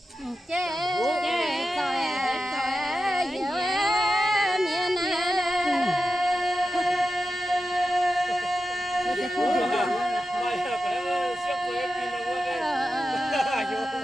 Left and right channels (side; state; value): both; normal; correlation 0.91